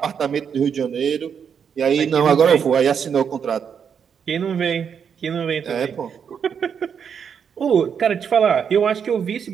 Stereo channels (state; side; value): quieter; left; 7.3 dB